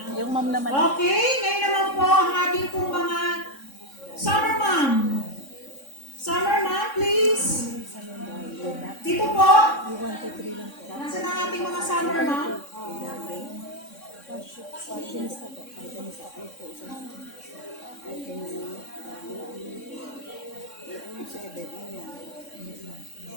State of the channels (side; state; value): right; late; 3.6 ms